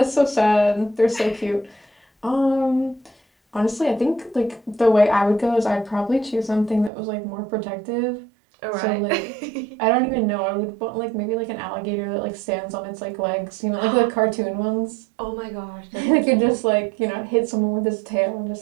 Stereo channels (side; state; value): left; drops out; at 6.9 s